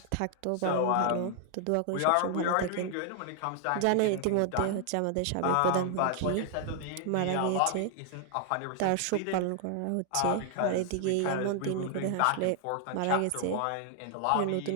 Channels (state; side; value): different; both; correlation 0.00